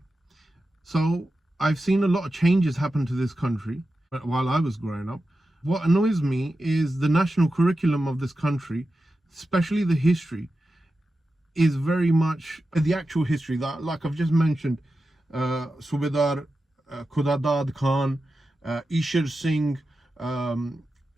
So I've seen a lot of changes happen to this country while I was growing up. What annoys me is the national curriculum of this country, especially the history, is very much the actual history that, like I've just mentioned, Subedar Khudadad Khan, Ishar Singh,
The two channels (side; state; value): both; normal; correlation 0.91